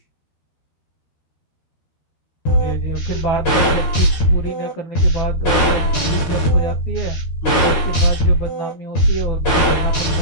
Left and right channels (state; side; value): late; right; 12 ms